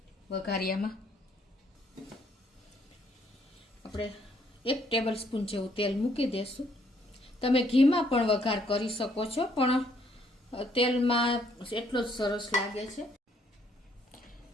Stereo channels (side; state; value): both; normal; correlation 0.68